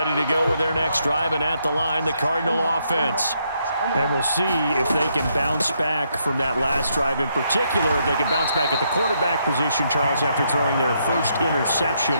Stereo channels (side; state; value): both; inverted; correlation -0.76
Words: ready to go with their next drive, and at the line, the Cardinal offense. And we'll see if they can bounce back from that last drive in particular, if they can bounce back at the quarterback position, Charles, after throwing their first